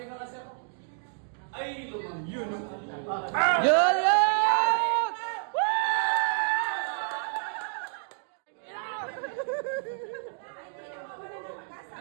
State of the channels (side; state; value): left; silent; digital silence